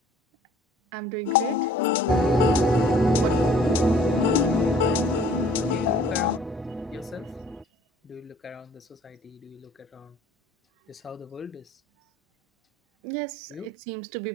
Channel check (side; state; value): both; normal; correlation 0.54